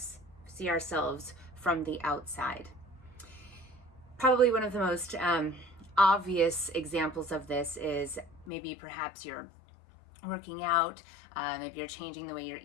from the outside. Probably one of the most obvious examples of this is maybe perhaps you're working out, maybe you're changing the way you're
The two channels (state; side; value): drops out; right; at 8.5 s